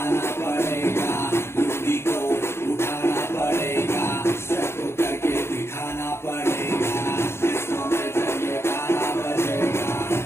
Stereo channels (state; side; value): late; right; 0.12 ms